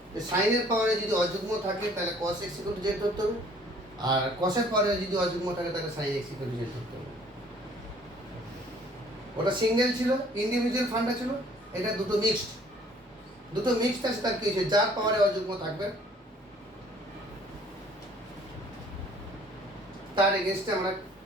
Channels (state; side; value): normal; both; correlation 0.56